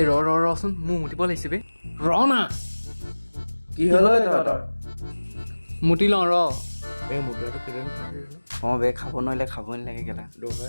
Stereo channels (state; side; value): inverted; both; correlation -1.00